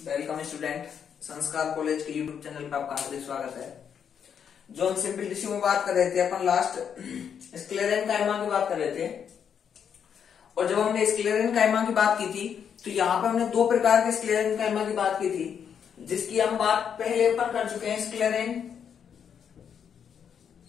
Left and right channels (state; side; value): quieter; right; 7.8 dB